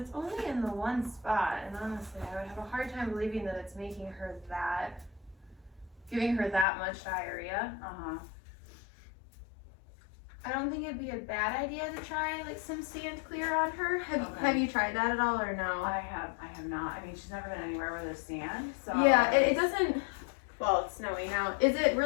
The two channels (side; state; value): right; drops out; at 6.7 s